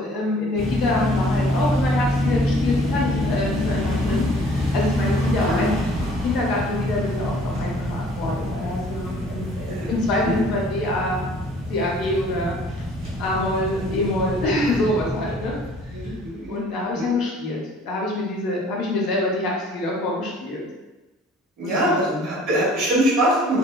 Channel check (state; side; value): normal; both; correlation 0.54